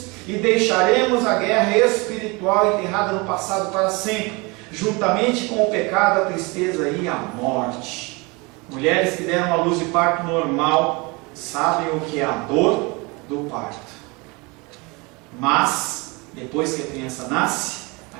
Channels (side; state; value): left; quieter; 27.0 dB